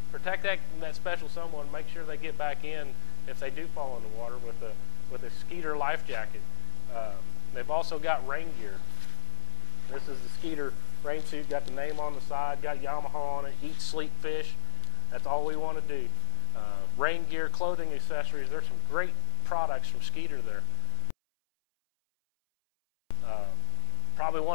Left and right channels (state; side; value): silent; right; 51 dB below the other